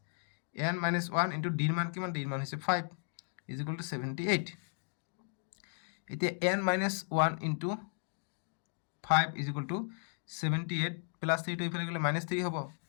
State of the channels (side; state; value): right; silent; 54 dB below the other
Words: n - 1 * d এর মান কিমান d এর মান হৈছে 5 = 78 এতিয়া n - 1 * 5 = 78 প্লাস 3 টো ইফালে গলে -3 হ'ব